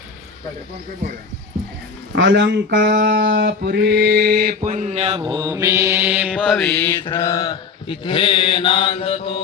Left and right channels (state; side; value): quieter; right; 5.3 dB